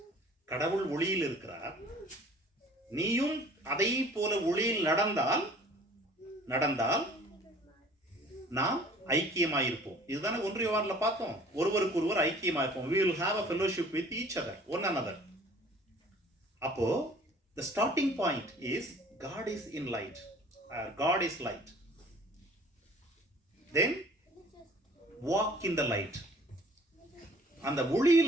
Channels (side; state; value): both; normal; correlation 0.51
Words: கடவுள் ஒளியில் இருக்கிறார். நீயும் அதை போல ஒளியில் நடந்தால் நாம் ஐக்கியமாயிருப்போம். இதுதானே 1 யோவான்ல பார்த்தோம். ஒருவருக்கு ஒருவர் ஐக்கியமாயிருப்போம். we will have a fellowship with each other, one another. அப்போ the starting point is God is in light. God is light. Then walk in the light. அந்த